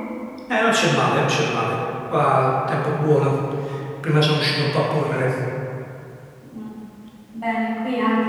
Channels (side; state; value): both; identical; correlation 1.00